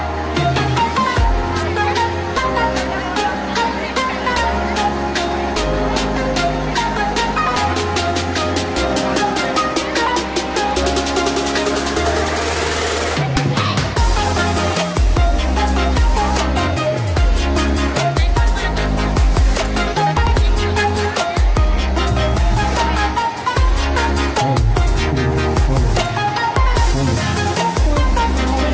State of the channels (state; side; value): identical; both; correlation 1.00